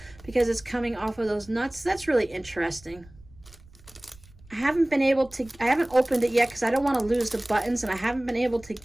because it's coming off of those nuts. That's really interesting. I haven't opened it yet because I don't want to lose the buttons, and I haven't been able to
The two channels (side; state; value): right; noise; rumble, 24 dB below the sound